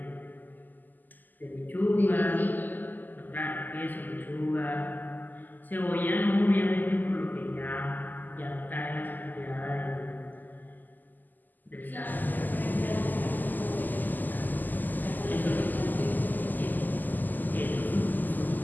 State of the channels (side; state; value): right; late; 0.086 ms